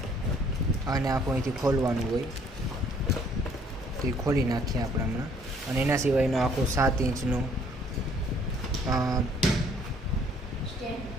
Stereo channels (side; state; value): both; normal; correlation 0.61